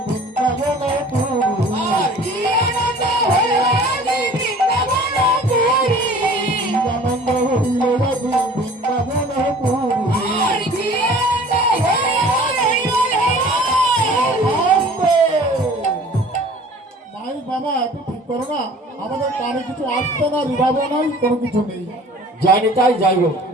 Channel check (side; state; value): both; normal; correlation 0.47